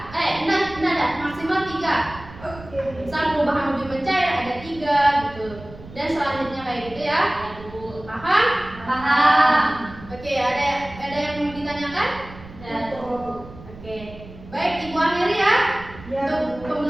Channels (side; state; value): right; noise; rumble, 17 dB below the sound